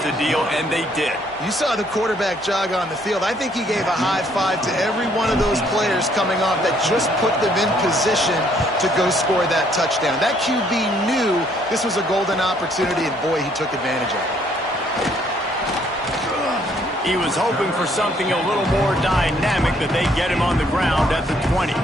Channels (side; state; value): both; normal; correlation 0.66